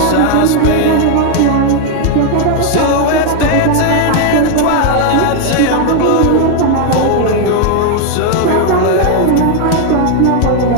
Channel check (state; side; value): different; both; correlation 0.00